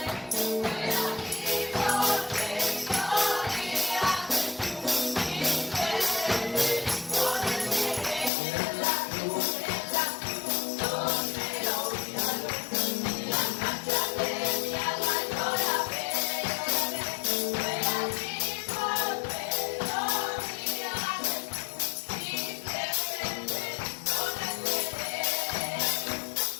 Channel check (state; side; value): drops out; right; at 8.3 s